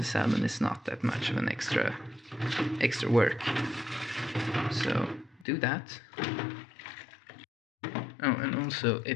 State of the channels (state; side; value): drops out; right; at 5.5 s